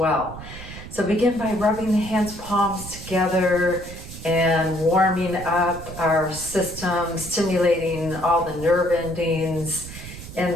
So begin by rubbing the hands palms together and warming up our system, stimulating all the nerve endings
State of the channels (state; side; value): noise; right; rumble, 13 dB below the sound